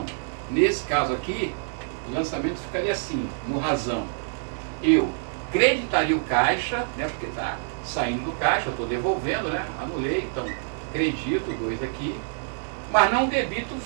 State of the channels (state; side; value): silent; left; digital silence